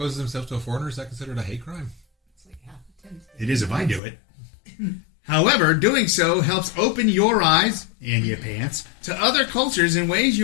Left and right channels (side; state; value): right; drops out; at 4.0 s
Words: himself to a foreigner. Is that considered a hate crime? It is if I do it. However, doing so helps open your eyes, and your pants, to other cultures in ways